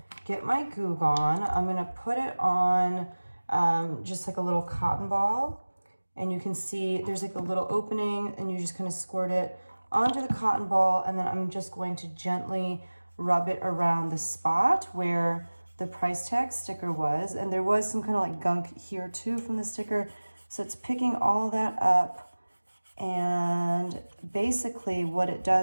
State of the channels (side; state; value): both; inverted; correlation -1.00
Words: get my Goo Gone. I'm going to put it on just like a little cotton ball. And you can see there's like a little opening, and you just kind of squirt it onto the cotton ball, and then I'm just going to gently rub it around the spot where the price tag sticker was. And there was some kind of like gunk here too from the sticker. So it's picking all that up. And basically what it